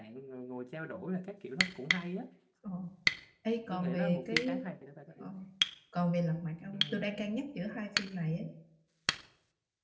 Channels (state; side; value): identical; both; correlation 1.00